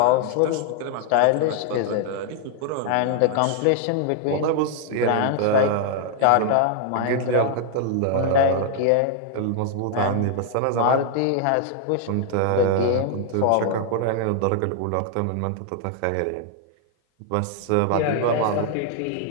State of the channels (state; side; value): different; both; correlation 0.00